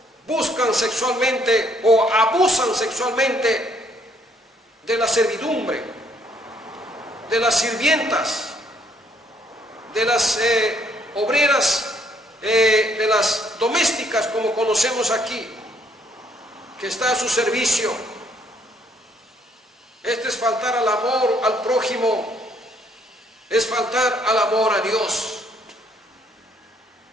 buscan sexualmente o abusan sexualmente de la servidumbre, de las sirvientas, de las obreras, de las domésticas, como conocemos aquí, que está a su servicio. Este es faltar al amor al prójimo, es faltar al amor a Dios.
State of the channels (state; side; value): normal; both; correlation 0.67